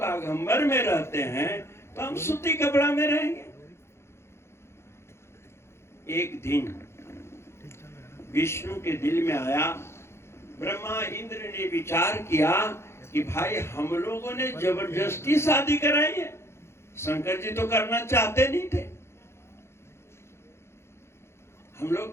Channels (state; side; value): late; right; 0.13 ms